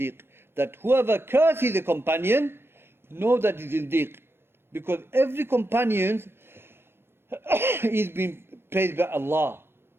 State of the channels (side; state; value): left; late; 0.11 ms